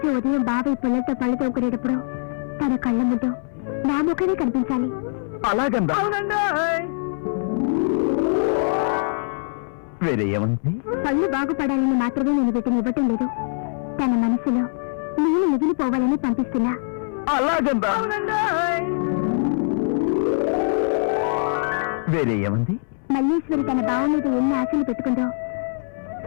ఉదయం బావి పిల్లలతో పళ్ళు తోముకునేటప్పుడు తన కళ్ళ ముందు నా ముఖమే కనిపించాలి. అలాగందా? వేరే ఏమంది? పళ్ళు బాగుపడాలని మాత్రమే నేను వీటిని ఇవ్వటం లేదు, తన మనసులో నేను మిగిలిపోవాలని పంపిస్తున్నా. అలాగందా? వేరే ఏమంది? మల్లేశ్వరి తన బావ మీద ఎన్ని ఆశలు పెట్టుకుందో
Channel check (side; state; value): right; silent; 64 dB below the other